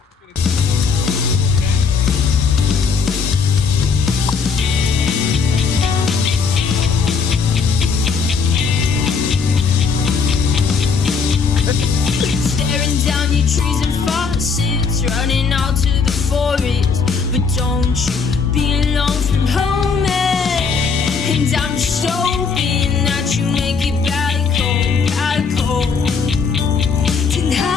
Staring down your trees and faucets, running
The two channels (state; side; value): quieter; right; 5.4 dB